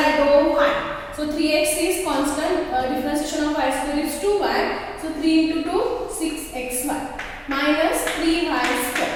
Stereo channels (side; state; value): both; identical; correlation 1.00